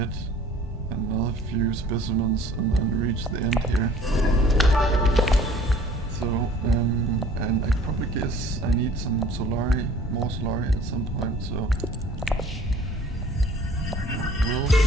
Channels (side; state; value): both; normal; correlation 0.51